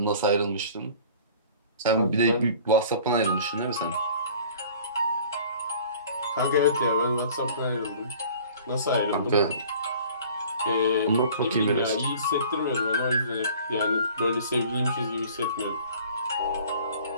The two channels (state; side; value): inverted; both; correlation -0.48